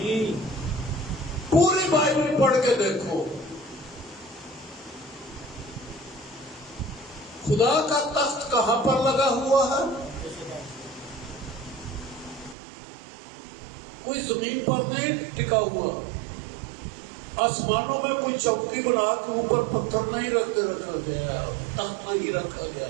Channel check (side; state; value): left; drops out; at 12.6 s